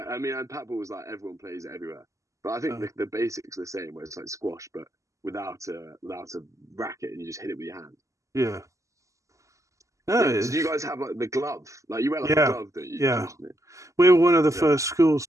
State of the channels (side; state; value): left; late; 0.16 ms